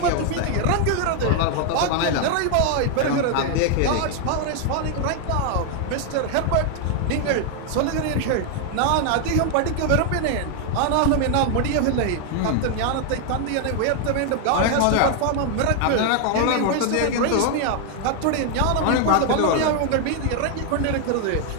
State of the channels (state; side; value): different; both; correlation 0.00